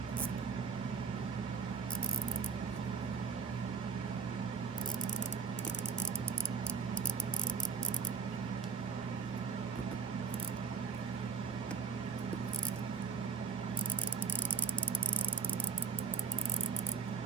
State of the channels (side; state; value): left; quieter; 5.4 dB